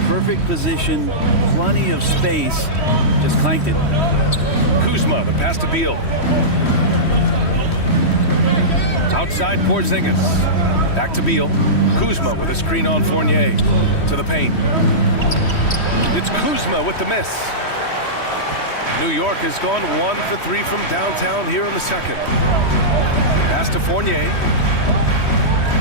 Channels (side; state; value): right; late; 3.1 ms